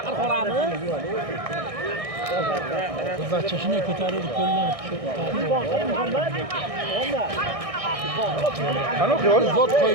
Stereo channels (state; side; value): late; left; 1.6 ms